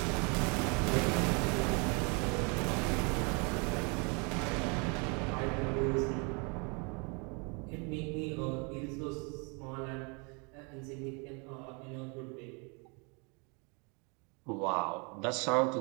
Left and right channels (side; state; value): left; quieter; 32.9 dB